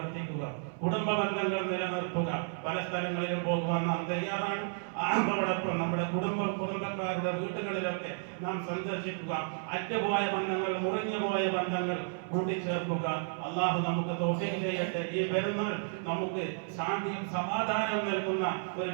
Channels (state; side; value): silent; left; 56 dB below the other